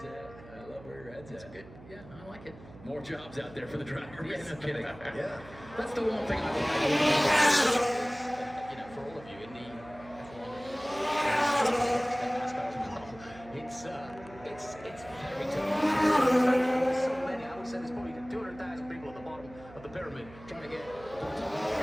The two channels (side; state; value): right; noise; hum, 19 dB below the sound